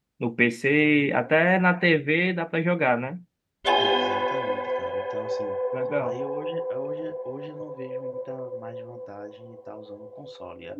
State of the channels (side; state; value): both; identical; correlation 1.00